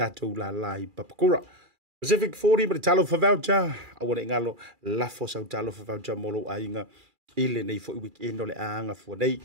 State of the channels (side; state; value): left; late; 2.4 ms